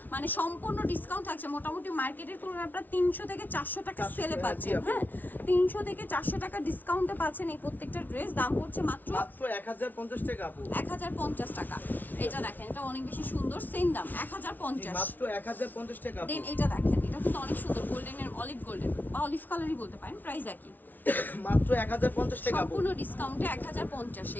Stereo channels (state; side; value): late; right; 0.084 ms